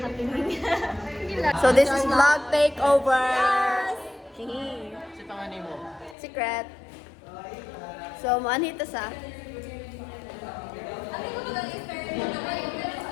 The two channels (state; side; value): drops out; right; at 6.2 s